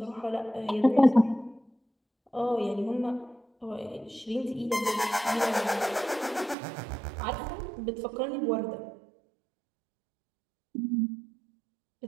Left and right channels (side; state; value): left; drops out; at 6.6 s